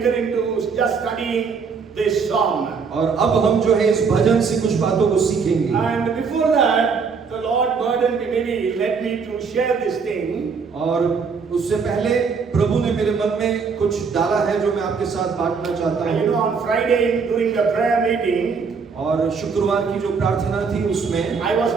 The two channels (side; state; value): left; quieter; 5.5 dB